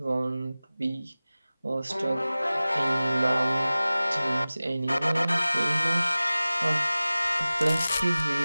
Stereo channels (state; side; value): inverted; both; correlation -0.97